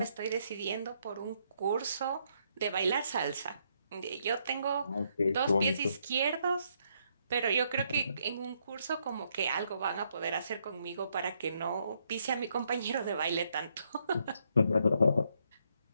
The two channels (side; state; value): both; inverted; correlation -0.74